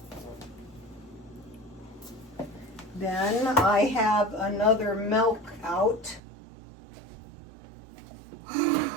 Then I have another milk out.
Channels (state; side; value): drops out; left; at 6.2 s